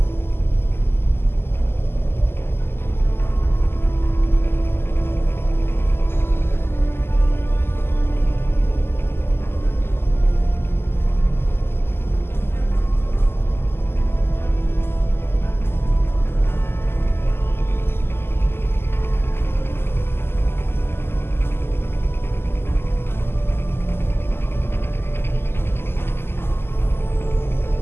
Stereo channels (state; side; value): late; right; 0.12 ms